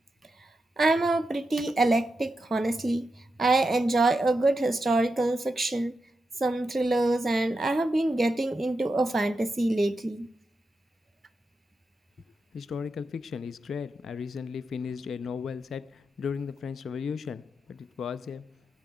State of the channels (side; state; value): both; normal; correlation 0.88